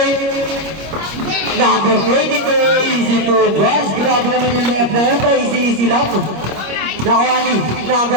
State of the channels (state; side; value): late; left; 25 ms